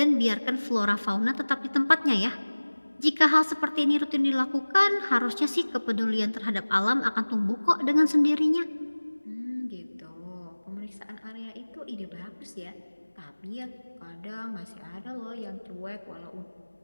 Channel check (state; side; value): inverted; both; correlation -1.00